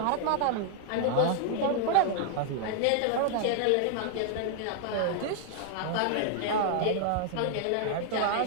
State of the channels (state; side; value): different; both; correlation 0.00